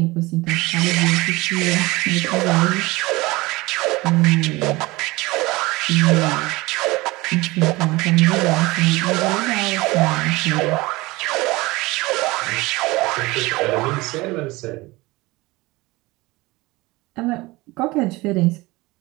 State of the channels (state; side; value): quieter; left; 21.5 dB